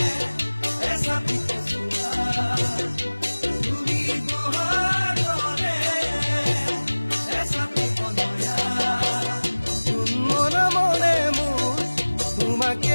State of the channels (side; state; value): both; inverted; correlation -1.00